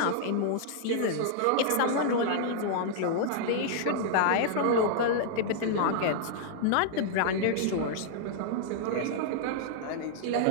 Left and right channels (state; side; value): different; both; correlation -0.01